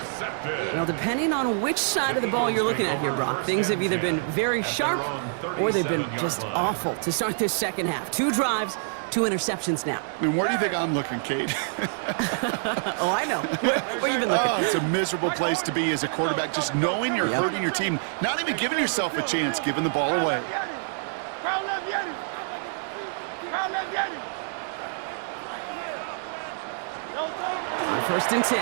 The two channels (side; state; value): left; silent; digital silence